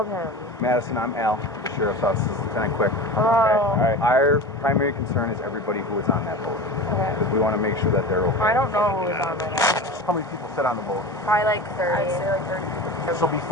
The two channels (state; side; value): normal; both; correlation 0.31